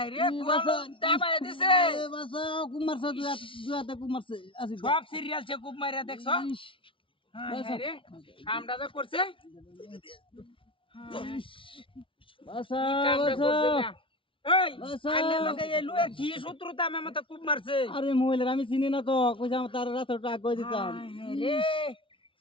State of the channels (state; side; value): late; right; 0.25 ms